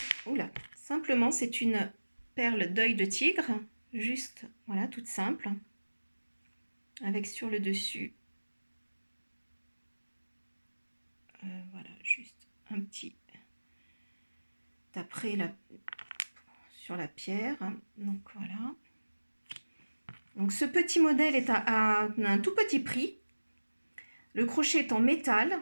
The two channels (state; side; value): inverted; both; correlation -1.00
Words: c'est une perle d'œil de tigre, juste, voilà, toute simple. Avec sur le dessus, voilà, juste un petit après sur la pierre. Donc voilà. Donc ce petit modèle est à un tout petit prix. Le crochet est en